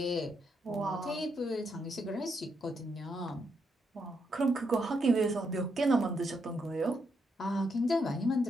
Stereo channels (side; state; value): both; normal; correlation 0.79